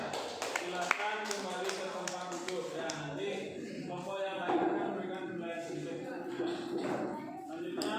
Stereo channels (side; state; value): both; identical; correlation 1.00